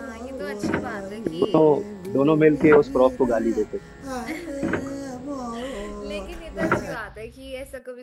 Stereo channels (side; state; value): both; identical; correlation 1.00